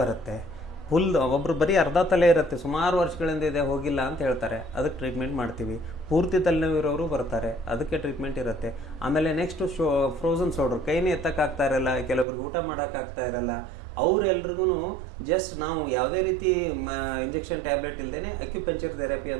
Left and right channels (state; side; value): drops out; left; at 12.2 s